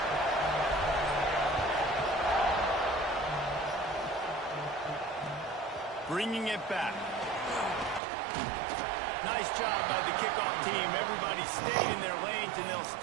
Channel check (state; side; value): drops out; left; at 8.0 s